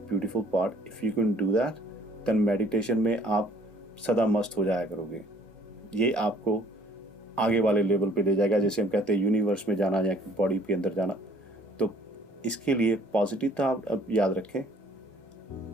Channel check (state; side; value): normal; both; correlation 0.58